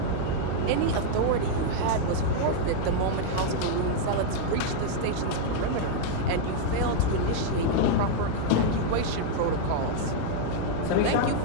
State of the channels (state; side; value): different; both; correlation -0.01